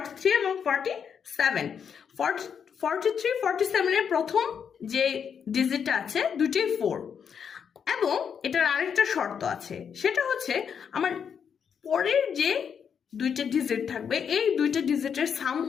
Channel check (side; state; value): right; quieter; 7.3 dB